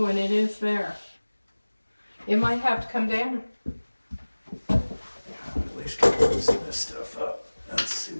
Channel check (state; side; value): inverted; both; correlation -1.00